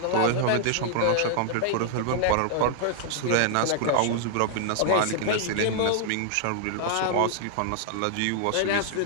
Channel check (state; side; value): different; both; correlation -0.01